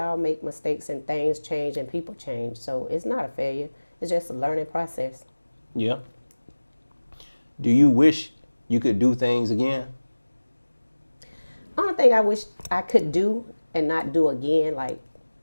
make mistakes and things change and people change. So it's not a failure. It's just a learning process. Yeah. Do you wish you could do things again? Only thing I wish I could do and not do again, like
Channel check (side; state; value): both; inverted; correlation -1.00